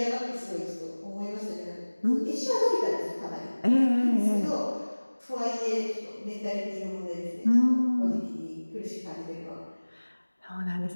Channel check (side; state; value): both; inverted; correlation -1.00